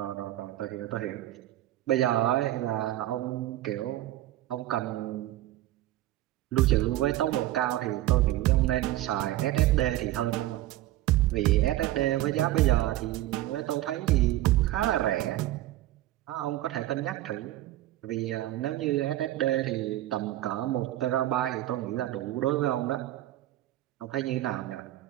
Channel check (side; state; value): left; quieter; 14.9 dB